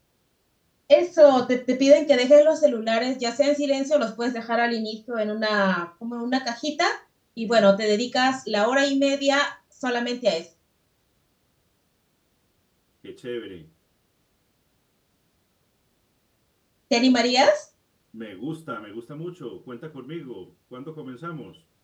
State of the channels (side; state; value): both; identical; correlation 1.00